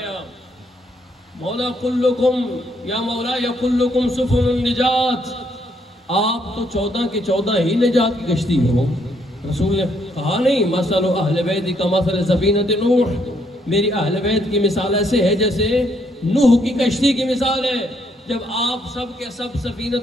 مولا کلکم یا مولا یا کلکم سفن النجات، آپ تو 14 کے 14 ہی نجات کی کشتی ہو۔ رسول نے کہا نہیں، مثل اہل بیت کا مثل سفینۃ نوح، میری اہل بیت کی مثال ایسے ہے جیسے نوح کی کشتی کی مثال ہے۔ جب آپ سب کے سب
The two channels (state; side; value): normal; both; correlation 0.72